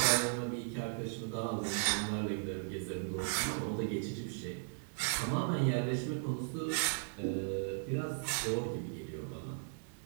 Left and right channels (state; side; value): silent; left; digital silence